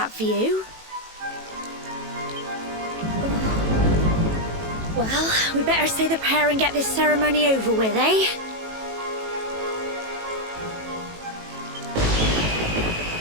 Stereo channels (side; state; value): left; late; 18 ms